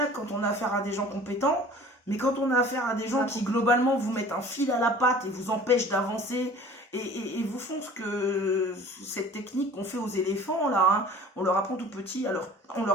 quand on a affaire à des gens compétents, mais quand on a affaire à des gens qui, globalement, vous mettent un fil à la patte et vous empêchent d'avancer et vous font cette technique qu'on fait aux éléphants, là, hein, on leur apprend tout petit, alors on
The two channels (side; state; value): both; normal; correlation 0.46